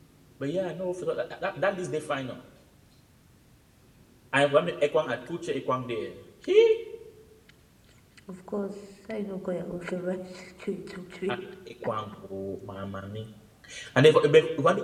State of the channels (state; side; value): identical; both; correlation 1.00